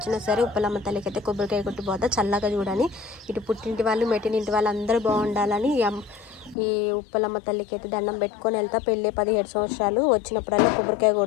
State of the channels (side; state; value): right; drops out; at 6.6 s